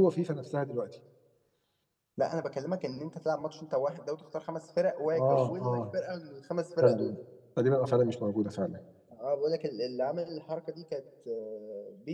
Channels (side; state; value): both; identical; correlation 1.00